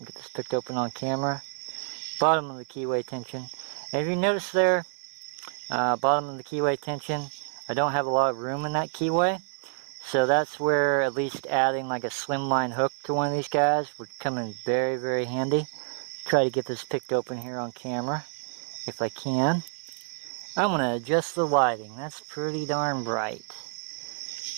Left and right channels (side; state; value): left; silent; 56 dB below the other